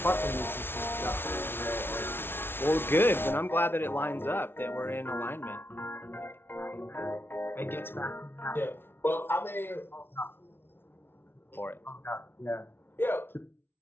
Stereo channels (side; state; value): right; late; 0.11 ms